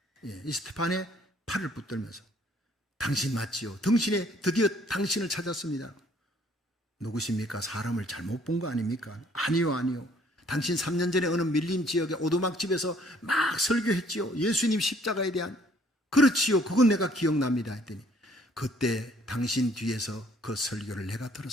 이 스테판의 팔을 붙들면서 당신 맞지요? 드디어 당신을 찾았습니다. 누구십니까? 사람을 잘못 본 거 아닙니까? 아니요. 당신 3년 전에 어느 밀림 지역의 오두막집에서 막 설교했지요. 예수님 십자가에 대한. 그렇지요. 그건 내가 기억납니다. 했더니 그때 당신 뒤에서 그 설교를 내가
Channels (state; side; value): normal; both; correlation 0.61